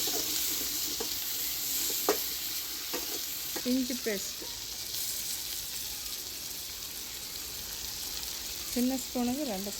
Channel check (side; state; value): both; identical; correlation 1.00